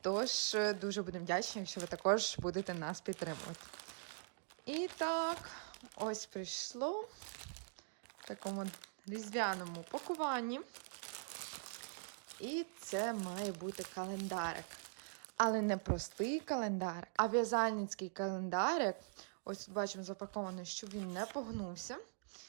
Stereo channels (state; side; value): silent; left; digital silence